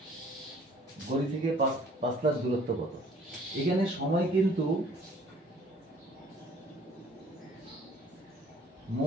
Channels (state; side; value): normal; both; correlation 0.55